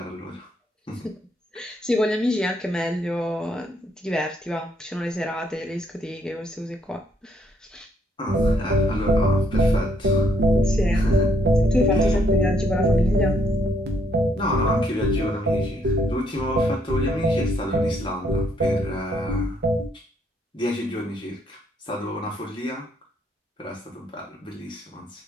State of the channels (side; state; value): both; normal; correlation 0.71